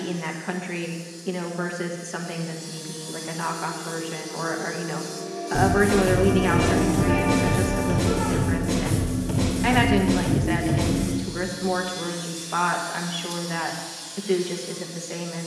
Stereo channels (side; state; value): both; identical; correlation 1.00